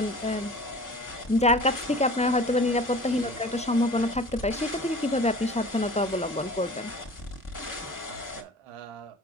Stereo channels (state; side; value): normal; both; correlation 0.42